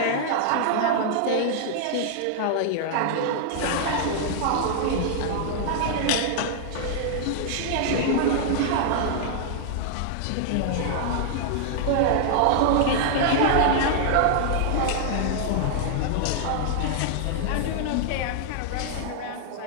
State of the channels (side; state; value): both; different; correlation -0.01